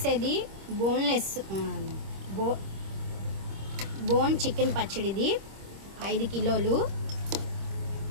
బోన్లెస్ బోన్ చికెన్ పచ్చడిది 5 కిలోలు.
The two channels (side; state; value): left; late; 26 ms